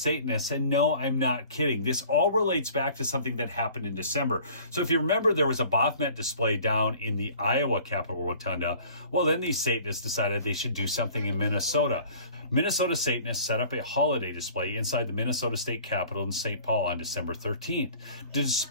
And no, I'm not kidding. This all relates back to something that happened in December. So if you remember, there was a Baphomet display down in the Iowa Capitol Rotunda. Well, then these Satanists decided they should do something in Minnesota. Minnesota Satanists set up a holiday display inside the Minnesota State Capitol in St. Paul on December 13th. The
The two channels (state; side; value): inverted; both; correlation -0.49